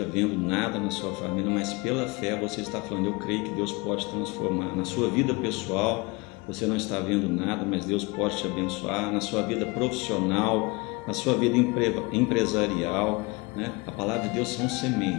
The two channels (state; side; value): quieter; right; 26.3 dB